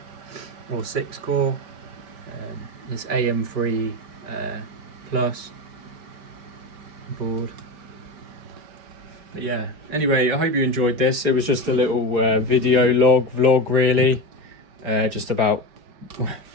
or 6-core. This AM3 Plus board. But yeah, anyway, I hope you enjoyed this. It was just a little video vlog really, just about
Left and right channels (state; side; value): late; left; 4.8 ms